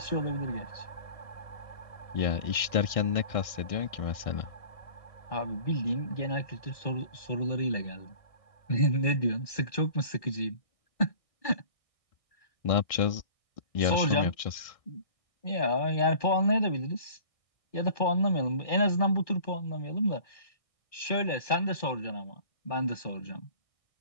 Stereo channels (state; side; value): late; right; 1.6 ms